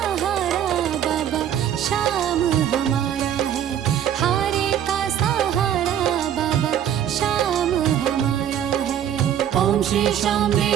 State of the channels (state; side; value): quieter; left; 10.0 dB